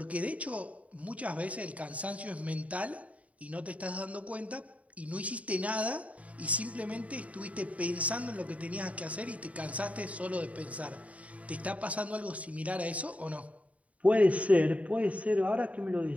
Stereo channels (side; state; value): left; late; 0.067 ms